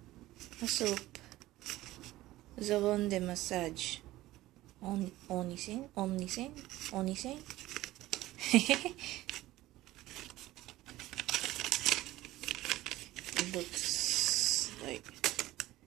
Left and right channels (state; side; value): quieter; left; 16.7 dB